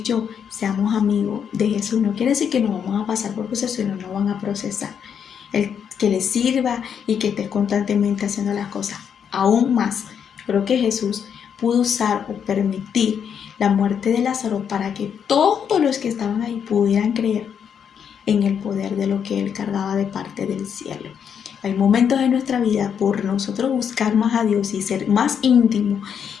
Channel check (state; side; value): quieter; right; 7.7 dB